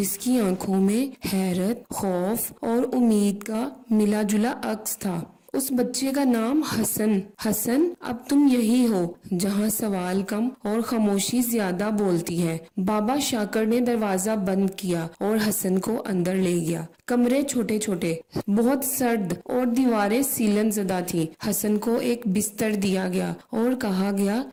کی آنکھوں میں حیرت، خوف اور امید کا ملا جلا عکس تھا۔ اس بچے کا نام حسن۔ حسن، اب تم یہی ہو جہاں سوال کم اور خاموشی زیادہ بولتی ہے۔ بابا شاکر نے دروازہ بند کیا اور حسن کو اندر لے گیا۔ کمرے چھوٹے چھوٹے، بہت سرد اور دیواریں سیلن زدہ تھی۔ حسن کو ایک بستر دیا گیا اور کہا گیا،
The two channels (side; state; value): both; identical; correlation 1.00